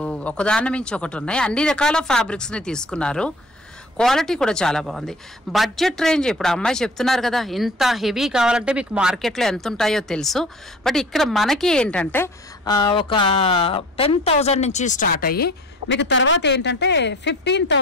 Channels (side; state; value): both; normal; correlation 0.44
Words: ఒకదాని మించి ఒకటి ఉన్నాయి. అన్ని రకాల ఫ్యాబ్రిక్స్ ని తీసుకున్నారు. క్వాలిటీ కూడా చాలా బాగుంది. బడ్జెట్ రేంజ్ ఇప్పుడు అమ్మాయి చెప్తున్నారు కదా, ఇంత హెవీ కావాలంటే మీకు మార్కెట్లో ఎంత ఉంటాయో తెలుసు. బట్ ఇక్కడ మనకి ఏంటంటే ఒక 10,000 నుంచి స్టార్ట్ అయ్యి మీకు తర్వాత ఏంటంటే